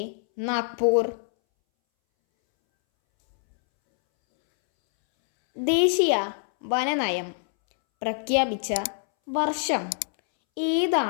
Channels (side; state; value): right; silent; 62 dB below the other